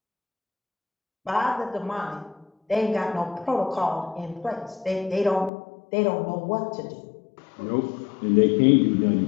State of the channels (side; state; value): right; drops out; at 5.5 s